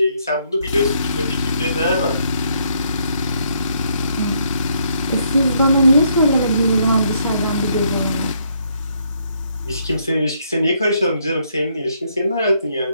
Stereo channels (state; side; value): inverted; both; correlation -0.72